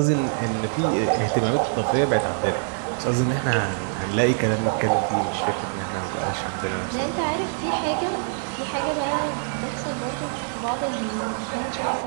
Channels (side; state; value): left; silent; 62 dB below the other